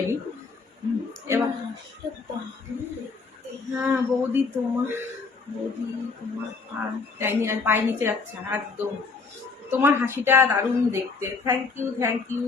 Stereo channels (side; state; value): right; quieter; 4.5 dB